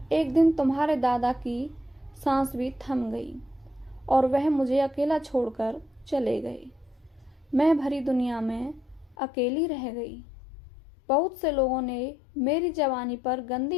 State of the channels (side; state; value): right; drops out; at 9.2 s